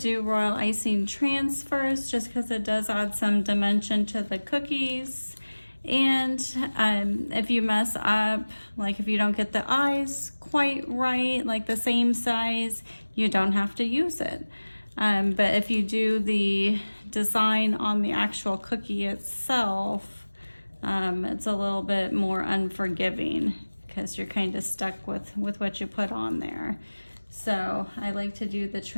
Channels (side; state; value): both; inverted; correlation -1.00